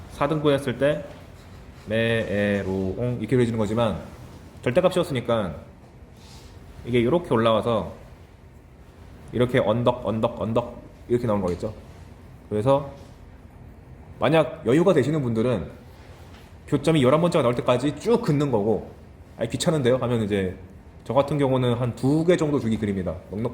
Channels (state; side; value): identical; both; correlation 1.00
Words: 4등분 했을 때 메에로옹 이렇게 그려지는 거지만 절대값 씌웠으니까 이게 이렇게 올라와서 이렇게 언덕 이렇게 나오는 거겠죠. 그래서 만약 여유가 되시는 분들은 교점이 11번째가 나올 때까지 쭉 긋는 거고, 아니 귀찮은데요? 하면 이제 저 같은 경우는 한 2개 정도 주기 그립니다.